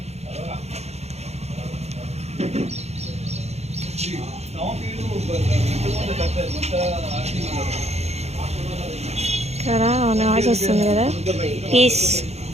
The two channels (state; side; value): late; left; 0.31 ms